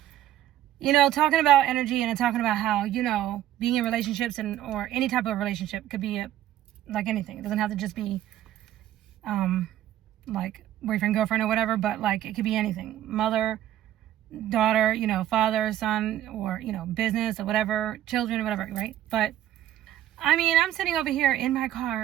You know, talking about energy and talking about how, you know, being in relationships or any type of relationship could be like anything. It doesn't have to just be, like boyfriend, girlfriend or whatever, but like it could be anything. Mother, daughter, you know, father, son, or, you know, business or whatever, children or whatever, right? But I mean, I'm sitting over here in my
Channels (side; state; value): left; quieter; 12.7 dB